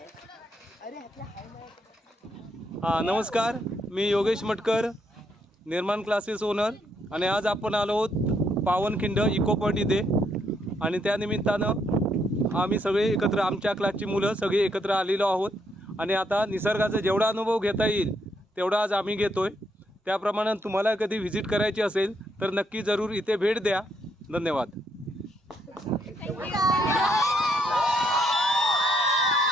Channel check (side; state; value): both; normal; correlation 0.75